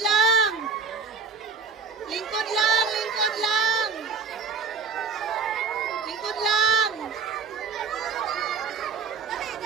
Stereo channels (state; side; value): quieter; left; 5.1 dB